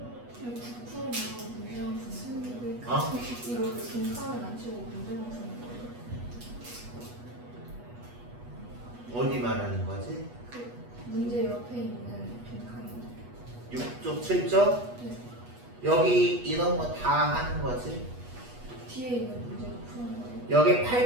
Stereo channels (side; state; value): left; late; 8.2 ms